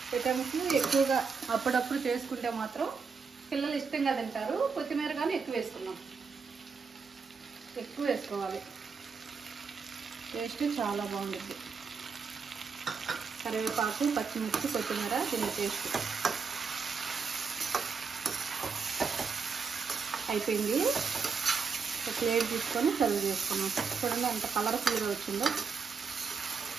ఐటమ్స్ ఎక్కువగా అప్పుడప్పుడు చేసుకుంటే మాత్రం పిల్లలు ఇష్టంగా తింటారు. కొత్తిమీర కానీ ఎక్కువ వేసుకున్నాం, ఎక్కువ వేసుకోవాలి, టేస్ట్ చాలా బాగుంటుంది. కరివేపాకు, పచ్చిమిర్చి, కొత్తిమీర దీని టేస్ట్. అయిపోయింది. ఒక ప్లేట్ తీసుకొని సర్వ్ చేసుకున్నాం. చూడండి ఎంత కలర్ఫుల్గా వచ్చిందో.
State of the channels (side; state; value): left; quieter; 5.4 dB